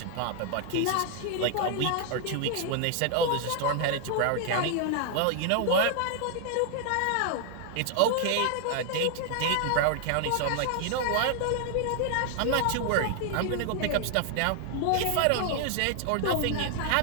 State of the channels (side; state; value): both; different; correlation 0.00